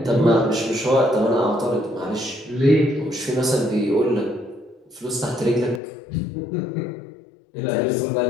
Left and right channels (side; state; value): right; drops out; at 5.8 s